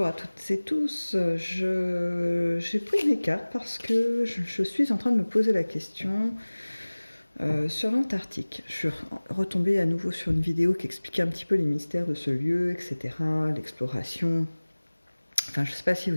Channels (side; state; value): both; inverted; correlation -1.00